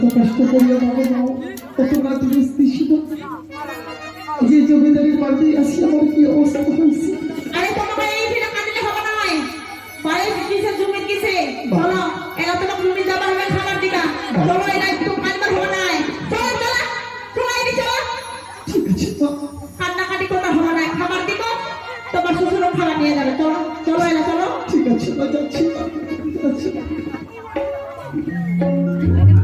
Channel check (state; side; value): identical; both; correlation 1.00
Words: কষ্ট করিয়া বাবা মাও কত রাত ছিল যে জমিদারের বাড়িতে আসি আমার কি অবস্থা হয়েছে। আরে তোমাকে এই ফিরে কাঁদলে হবে না হয় বাড়ি কিসে জমি কিসে চলো এলা তোমাকে জমি যাবা হবে খাবার দিকা চলো এলা একটু কাঁদবার হবে না চলো চলো তোমার এই চলো ঠিক আছে তো কান্নাকাটি করতে হবে না খাবার দিব তোমার শ্বশুরও খাবার নিয়ে যাবে চলো চলো এলা চলো ঠিক আছে না যাচ্ছি যাচ্ছি।